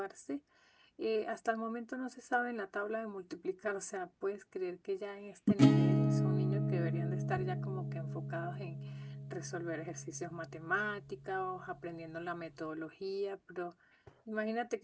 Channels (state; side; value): identical; both; correlation 1.00